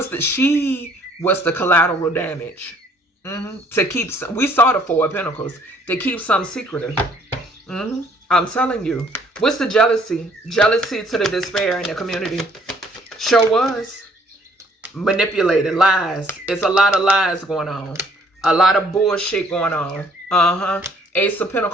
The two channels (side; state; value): both; normal; correlation 0.61